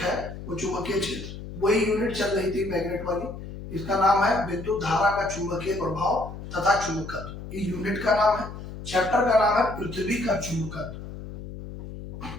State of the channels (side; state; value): left; noise; hum, 11 dB below the sound